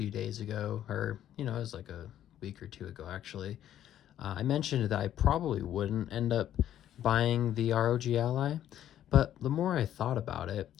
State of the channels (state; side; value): quieter; right; 11.4 dB